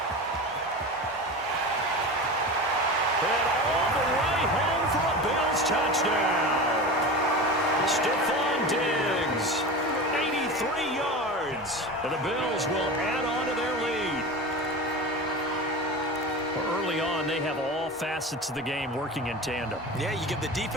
And all the way home for a Bills touchdown. Stephon Diggs, 83 yards. And the Bills will add on to their lead. Early on, they have all facets of the game working in tandem. Yeah, you give the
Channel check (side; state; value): both; normal; correlation 0.29